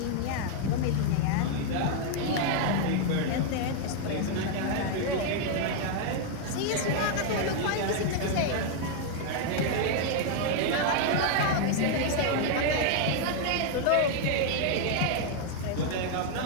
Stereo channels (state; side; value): different; both; correlation 0.00